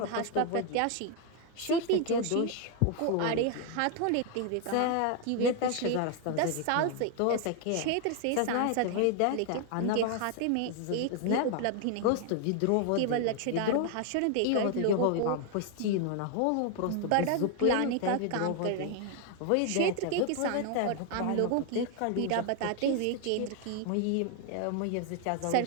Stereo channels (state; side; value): different; both; correlation 0.00